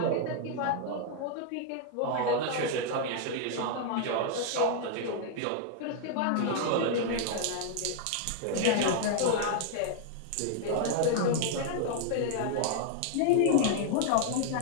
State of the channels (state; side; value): different; both; correlation -0.01